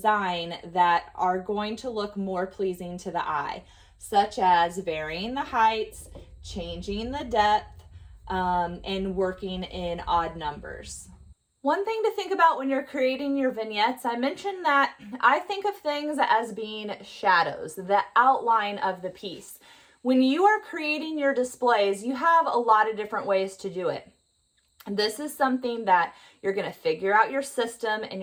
that are going to look more pleasing to the eye, such as varying the heights, changing the depth, and working in odd numbers. One thing to think about when you're creating your vignettes, I mentioned that I think of things as being shadows, the outline of the piece. When you are creating your displays, you have a lot of different ways to do it. This is something that you're going to figure out your system and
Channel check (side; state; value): both; identical; correlation 1.00